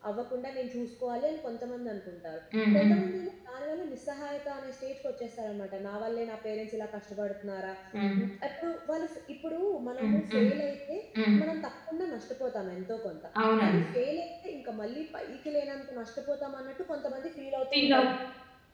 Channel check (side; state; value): both; identical; correlation 1.00